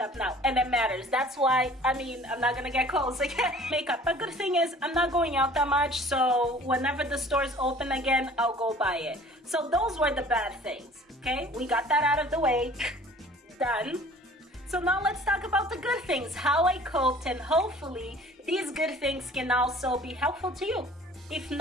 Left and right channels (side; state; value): both; normal; correlation 0.49